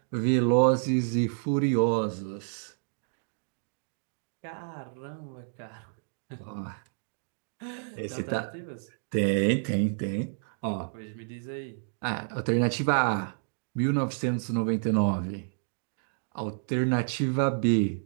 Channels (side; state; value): left; silent; digital silence